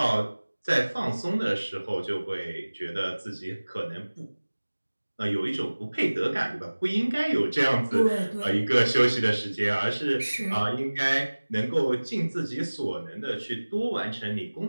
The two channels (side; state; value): both; inverted; correlation -1.00